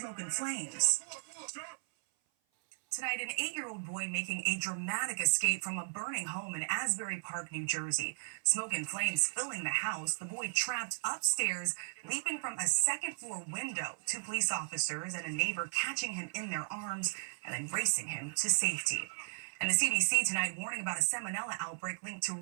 and flames. Tonight, an 8-year-old boy making a dramatic escape from a burning home in Asbury Park, New Jersey. Smoke and flames filling the house. The boy trapped upstairs, leaping from a second-floor window. 2 police officers and a neighbor catching him in their arms and then racing him to safety. And the CDC tonight warning about a salmonella outbreak linked to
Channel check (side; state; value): left; silent; 54 dB below the other